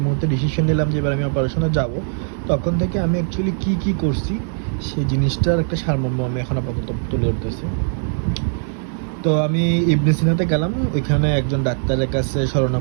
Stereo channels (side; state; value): left; silent; 66 dB below the other